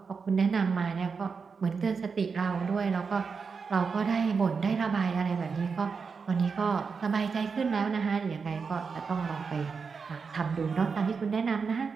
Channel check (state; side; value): quieter; left; 5.3 dB